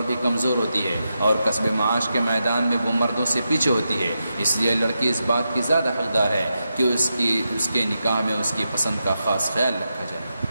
بھی کمزور ہوتی ہے اور کسب معاش کے میدان میں وہ مردوں سے پیچھے ہوتی ہے۔ اس لیے لڑکی اس بات کی زیادہ حقدار ہے کہ اس کے نکاح میں اس کی پسند کا خاص خیال رکھا جائے۔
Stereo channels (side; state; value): both; inverted; correlation -0.87